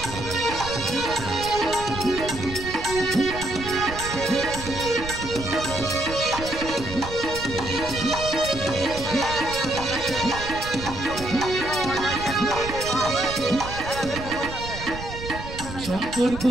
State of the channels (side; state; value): right; noise; rumble, 10 dB below the sound